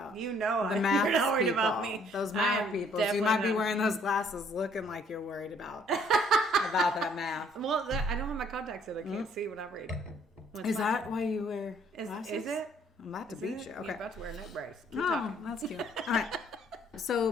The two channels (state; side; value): normal; both; correlation 0.63